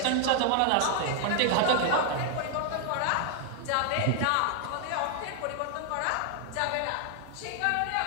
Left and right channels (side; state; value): both; different; correlation 0.00